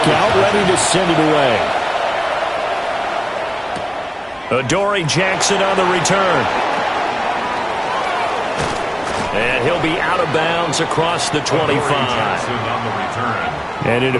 out ready to send it away. Adoree Jackson on the return. And he'll be out of bounds across the 25. And it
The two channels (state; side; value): identical; both; correlation 1.00